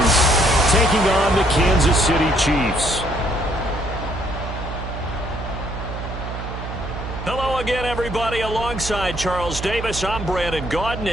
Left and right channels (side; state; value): right; noise; hum, 7 dB below the sound